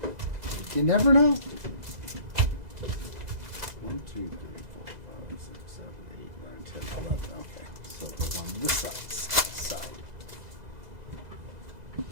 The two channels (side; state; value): left; late; 2.0 ms